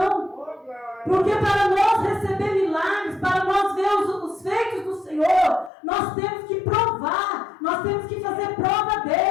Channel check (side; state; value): right; drops out; at 5.7 s